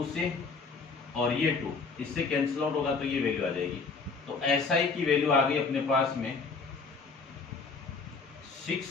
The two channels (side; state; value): right; quieter; 4.6 dB